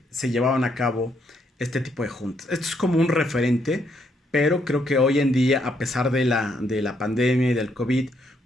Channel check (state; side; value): normal; both; correlation 0.74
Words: llevaban a cabo este tipo de juntas. Esto es como un referente, pero creo que hoy en día, a pesar de la pandemia y del COVID,